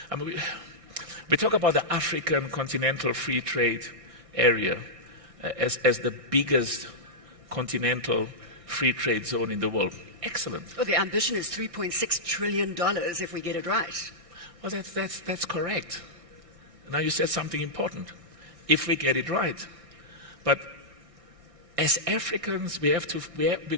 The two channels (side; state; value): left; late; 1.6 ms